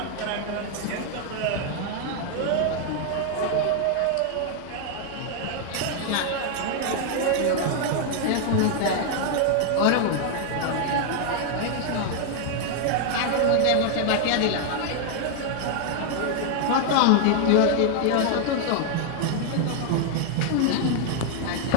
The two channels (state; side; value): different; both; correlation 0.00